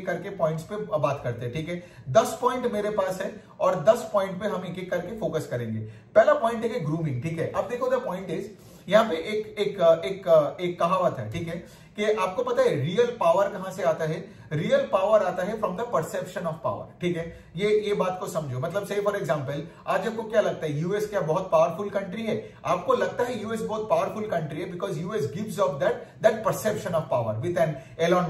करके पॉइंट्स पे बात करते हैं, ठीक है। 10 पॉइंट मेरे पास है और 10 पॉइंट पे हम एक एक करके फोकस करेंगे। पहला पॉइंट है कि ग्रूमिंग, ठीक है। अब देखो द पॉइंट इज, यहाँ पे एक कहावत है, ठीक है, कि आपको पता है रियल पावर कहां से आता है। रियल पावर आता है from the perception of power, ठीक है। ये बात को समझो, मतलब से फॉर एग्जांपल आज आपको क्या लगता है यूएस क्या बहुत पावरफुल कंट्री है? आपको लगता है यूएस बहुत पावरफुल कंट्री है because US gives off that perception of power with an Elon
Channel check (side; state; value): both; identical; correlation 1.00